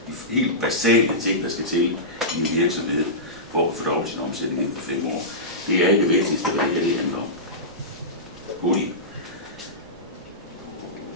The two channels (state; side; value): normal; both; correlation -0.17